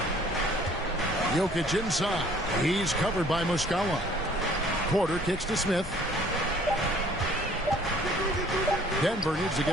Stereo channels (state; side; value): normal; both; correlation 0.56